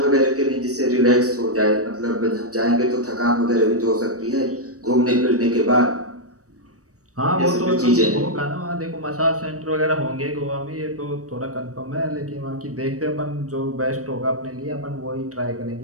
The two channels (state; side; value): late; left; 0.66 ms